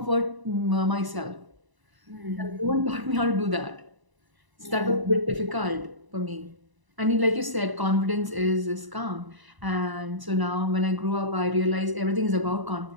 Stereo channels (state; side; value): late; left; 1.0 ms